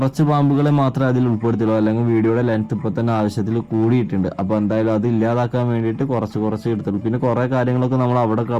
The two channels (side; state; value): both; identical; correlation 1.00